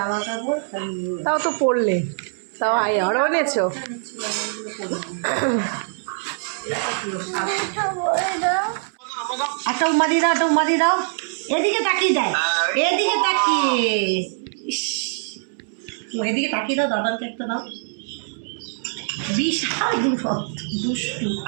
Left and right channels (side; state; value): left; silent; 63 dB below the other